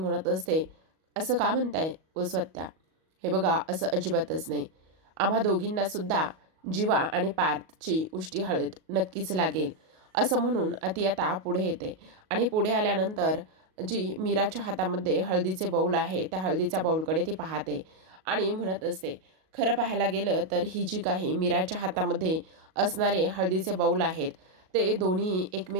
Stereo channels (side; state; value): left; late; 38 ms